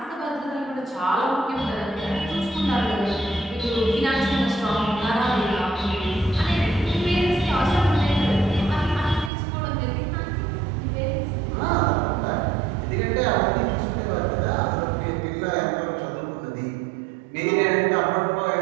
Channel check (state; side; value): drops out; left; at 9.3 s